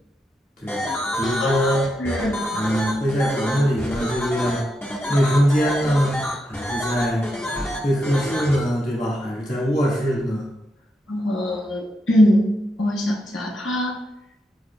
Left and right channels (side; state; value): both; normal; correlation 0.84